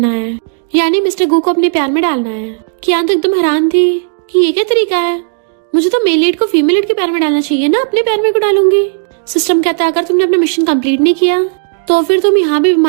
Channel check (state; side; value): silent; left; digital silence